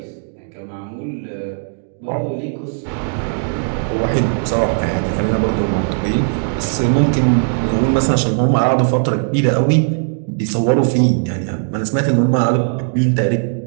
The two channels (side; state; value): left; silent; 66 dB below the other